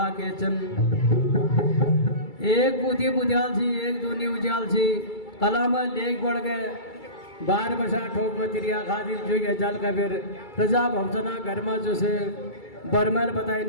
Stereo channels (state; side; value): late; right; 2.3 ms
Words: के चन एक बुद्धि बुझाल छी एक दूनी उजाल छी कलाम लेख बढ़ गए 12 बसा ठोक में तिरिया खातिर जो ये जल का फिर प्रजा भवसना घर में जो से बरमल बताई